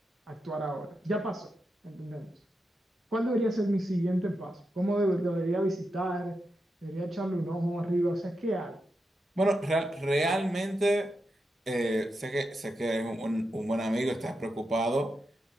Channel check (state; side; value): normal; both; correlation 0.87